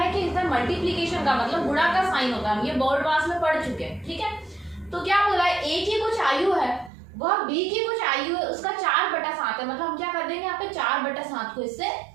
कि इसमें मल्टीप्लीकेशन का मतलब गुणा का साइन होता है। हम ये बोर्ड पास में पढ़ चुके हैं। ठीक है, तो क्या बोला है, ए की कुछ आयु है वह बी की कुछ आयु है उसका 4/7 है। मतलब हम क्या कर देंगे, यहाँ पे 4/7 को इससे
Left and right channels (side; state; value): left; drops out; at 6.9 s